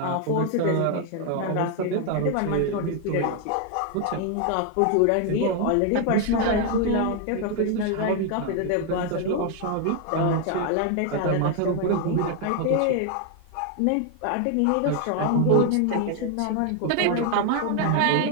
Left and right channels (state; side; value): different; both; correlation 0.01